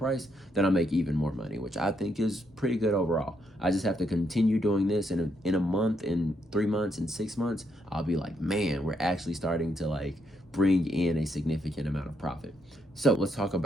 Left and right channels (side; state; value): both; normal; correlation 0.76